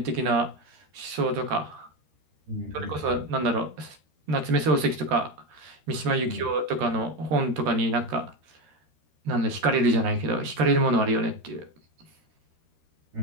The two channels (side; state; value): left; late; 13 ms